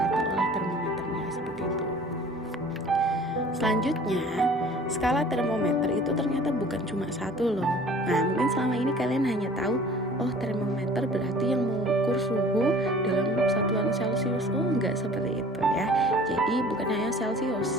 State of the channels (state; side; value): normal; both; correlation 0.48